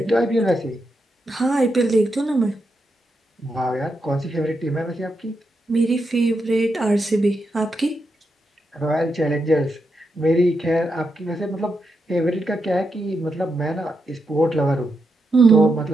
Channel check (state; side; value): normal; both; correlation 0.84